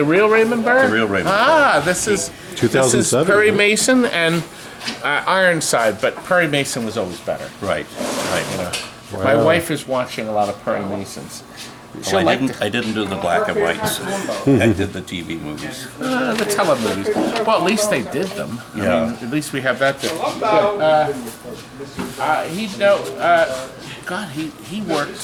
real Raymond Burr? The real Raymond Ah, this is 2007, Perry right? Mason and Ironside, but Perry Mason was always better. right. You know, my wife is watching a lot of Perry Masons. She'll Well, like I didn't do the black and whites. I did the TV movies. the telemovies. Well, at least they did them. I Yeah. mean, at least we have that. God, he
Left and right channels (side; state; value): both; identical; correlation 1.00